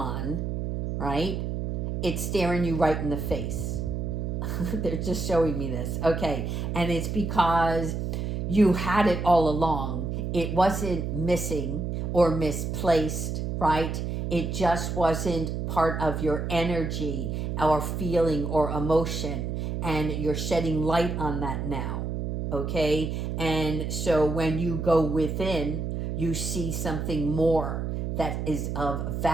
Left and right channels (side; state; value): right; noise; hum, 2 dB below the sound